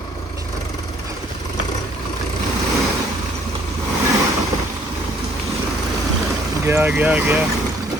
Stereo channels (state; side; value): normal; both; correlation 0.61